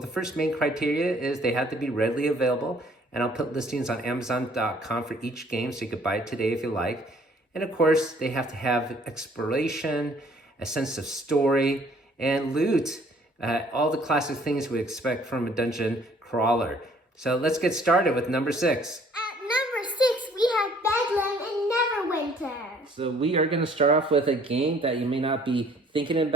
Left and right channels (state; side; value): normal; both; correlation 0.59